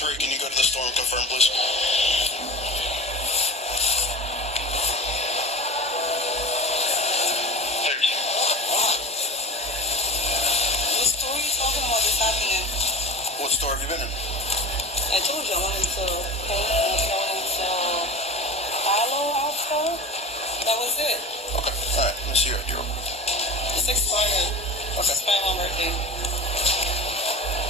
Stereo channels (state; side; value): normal; both; correlation 0.32